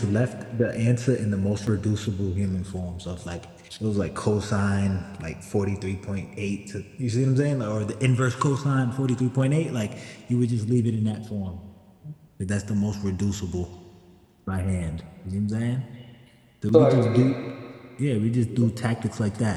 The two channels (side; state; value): both; identical; correlation 1.00